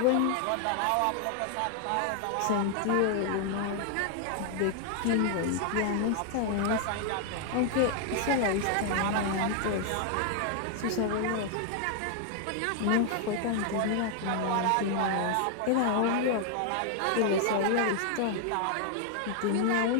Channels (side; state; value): both; different; correlation 0.00